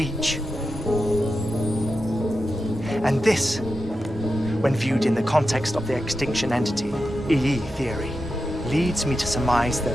And this, when viewed in the context of the extinction entity, EE theory, leads me to surmise that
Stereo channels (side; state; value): both; normal; correlation 0.89